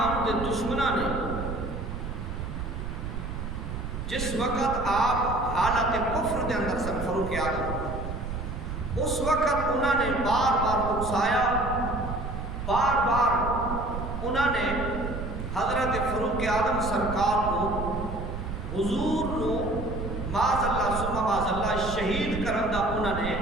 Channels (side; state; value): right; noise; rumble, 6 dB below the sound